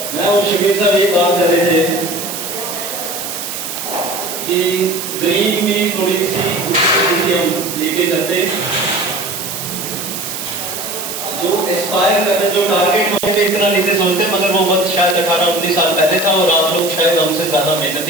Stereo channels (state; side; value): noise; right; hiss, 6 dB below the sound